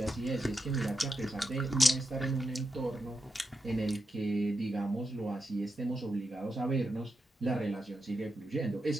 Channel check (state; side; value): normal; both; correlation 0.87